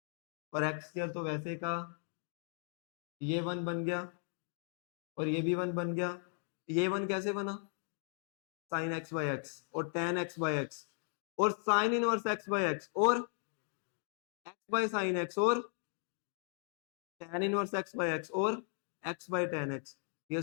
और एक्स स्क्वायर तो वैसे का, ये वन बन गया और ये भी वन बन गया। ये वन कैसे बना, साइन एक्स बाई एक्स और टेन एक्स बाई एक्स और sign inverse X by x और एक्स बाई साइन एक्स और ten inverse X by x और एक्स बाई टेन एक्स, ये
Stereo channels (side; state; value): right; silent; 53 dB below the other